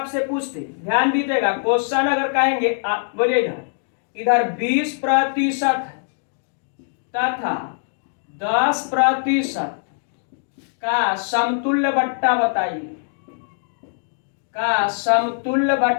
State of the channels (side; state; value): right; silent; digital silence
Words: पूछते, ध्यान दीजिएगा, क्वेश्चन अगर कहेंगे, बोलिएगा इधर 20% तथा 10% का समतुल्य वट्टा बताइए। का समतुल्य